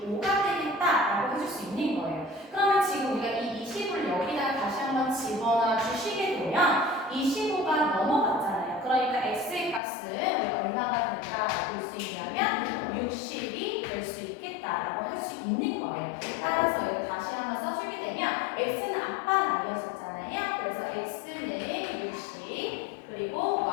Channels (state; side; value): drops out; right; at 9.8 s